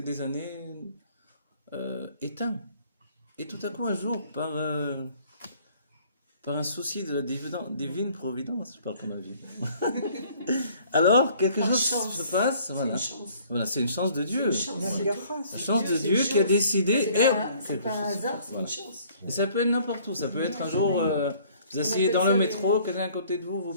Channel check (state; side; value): inverted; both; correlation -0.57